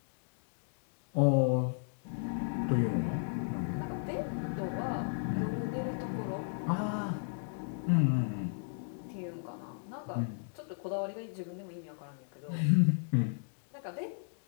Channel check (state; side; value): silent; right; digital silence